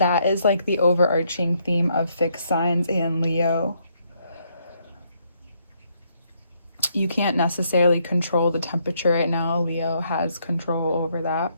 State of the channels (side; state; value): both; inverted; correlation -0.73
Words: is like the overarching theme of fixed signs and Leo. You can't necessarily control the temperature right now. Leo has control over that.